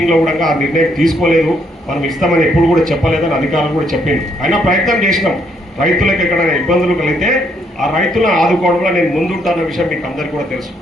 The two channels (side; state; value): both; normal; correlation 0.71